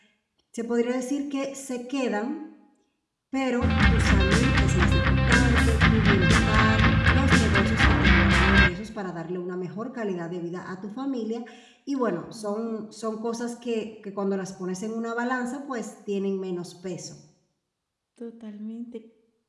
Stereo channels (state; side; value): identical; both; correlation 1.00